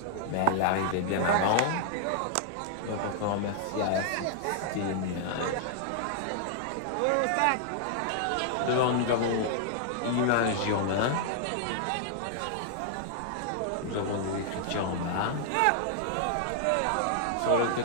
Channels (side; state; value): both; different; correlation -0.01